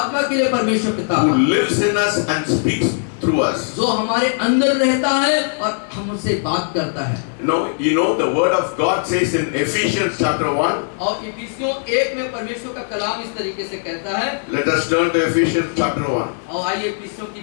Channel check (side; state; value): right; silent; digital silence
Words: के लिए परमेश्वर पिता who का, lives in us and speaks through us. जो हमारे अंदर रहता है और हमसे बात करता है। You know the word of God says in Ephesians chapter 1. और इफिसियों 1 में परमेश्वर का कलाम इस तरीके से कहता है। Let us turn to Ephesians chapter 1. और आइए इफिसियों की